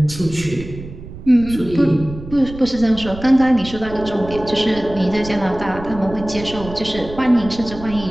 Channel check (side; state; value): right; noise; rumble, 13 dB below the sound